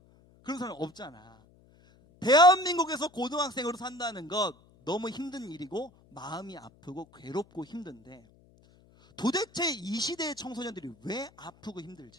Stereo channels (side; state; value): left; noise; hum, 28 dB below the sound